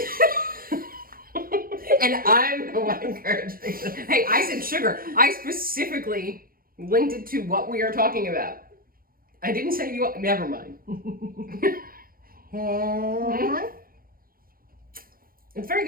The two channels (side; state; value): left; late; 0.42 ms